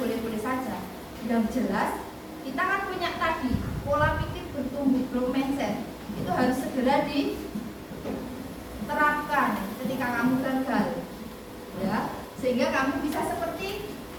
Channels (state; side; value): identical; both; correlation 1.00